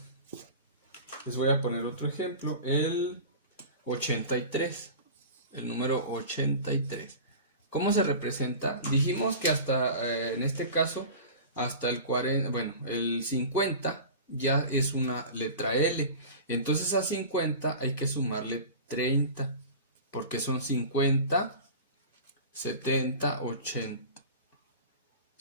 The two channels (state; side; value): inverted; both; correlation -0.35